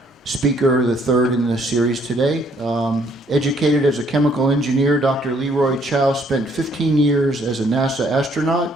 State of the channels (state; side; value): normal; both; correlation 0.65